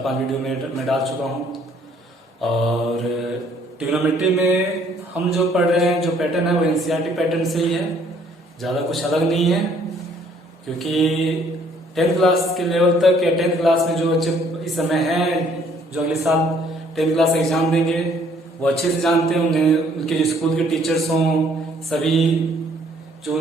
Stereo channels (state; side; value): normal; both; correlation 0.62